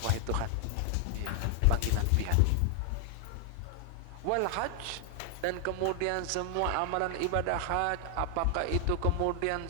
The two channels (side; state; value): both; different; correlation 0.00